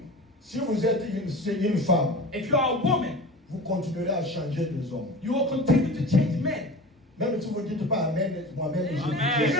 Si vous êtes une femme, if you are a woman, vous continuerez à changer des hommes. you will continue to change men. Même si vous ne dites pas Amen, moi-même, je If dis you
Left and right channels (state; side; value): normal; both; correlation 0.34